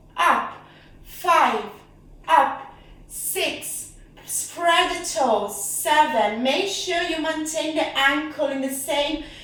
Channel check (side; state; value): both; identical; correlation 1.00